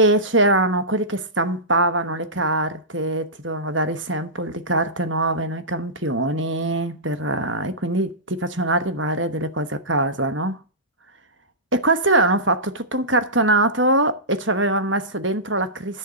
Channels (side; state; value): both; normal; correlation -0.18